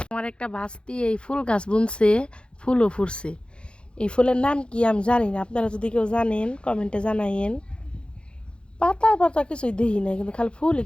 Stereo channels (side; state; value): right; late; 0.055 ms